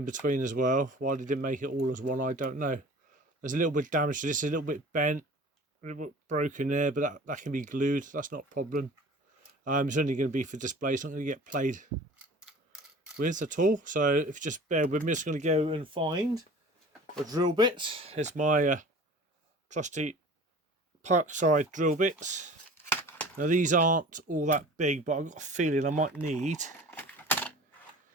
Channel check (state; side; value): normal; both; correlation 0.43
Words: between as well. Why they didn't make it all as one, I don't know. There's a little bit of damage to this, a little bit bent, a little bit broken there, but that can be glued, that's not a problem. It's only going to be for display, it's not going to get played with at all. So if you just bear with me, I'm just going to go and find a drill bit. Here's my trusty Parkside drill bits. Now these aren't all that big, but I've got a feeling I might need...